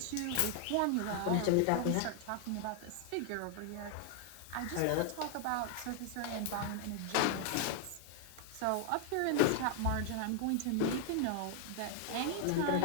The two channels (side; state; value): both; different; correlation 0.00